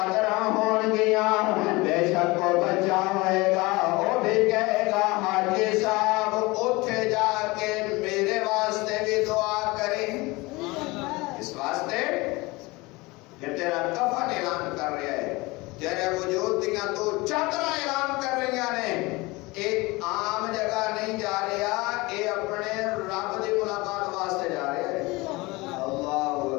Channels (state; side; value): quieter; right; 23.1 dB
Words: ہون گیاں بے شک کو بچا ہوئے گا وہ بھی کہے گا حاجی صاحب اٹھے جا کے میرے واسطے بھی دعا کریں اس واسطے کہ تیرا کفن اعلان کر رہا ہے تیرے وجود دیاں تو چادراں اعلان کر رہی نے ایک عام جگہ نہیں جا رہا اے اپنے رب دی ملاقات واسطے جا رہا ہے اللہ